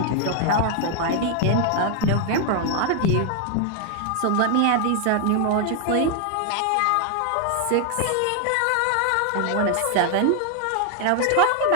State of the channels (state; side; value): different; both; correlation 0.00